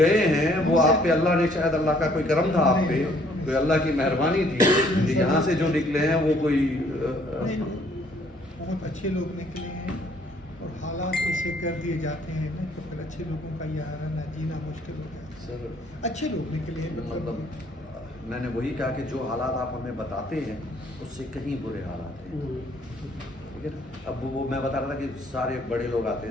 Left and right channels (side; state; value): both; normal; correlation 0.62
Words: ہیں وہ آپ پہ اللہ نے شاید اللہ کا کوئی کرم تھا آپ پہ، کوئی اللہ کی مہربانی تھی کہ یہاں سے جو نکلے ہیں وہ کوئی بہت اچھے لوگ نکلے ہیں، اور حالات ایسے کر دیے جاتے ہیں نا تو پھر اچھے لوگوں کا یہ رہنا جینا مشکل ہو جاتا ہے۔ سر اچھے لوگ نکلے ہیں، مطلب میں نے وہی کہا کہ جو حالات آپ ہمیں بتاتے ہیں اس سے کہیں برے حالات ہیں، ٹھیک ہے نا۔ اب وہ میں بتا رہا تھا کہ سارے بڑے لوگ آتے